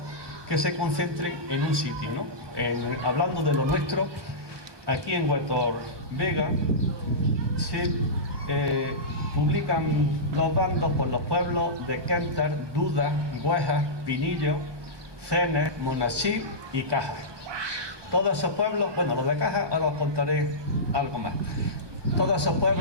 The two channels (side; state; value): left; late; 1.2 ms